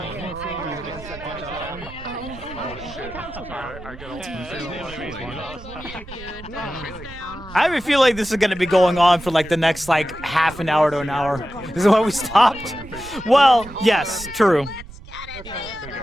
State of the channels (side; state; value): right; noise; rumble, 16 dB below the sound